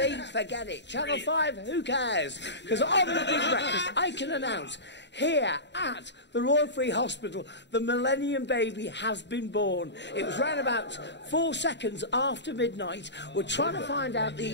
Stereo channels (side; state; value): right; late; 0.51 ms